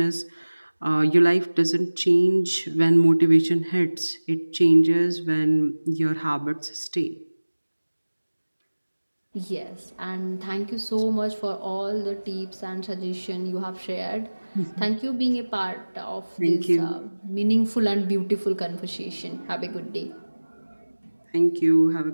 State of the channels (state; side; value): inverted; both; correlation -1.00